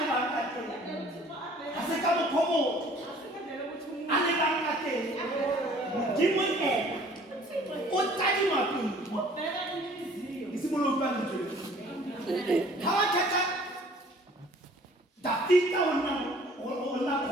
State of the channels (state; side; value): normal; both; correlation 0.53